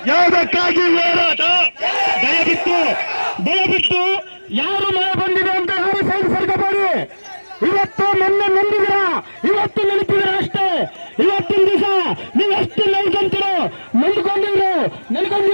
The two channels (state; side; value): inverted; both; correlation -1.00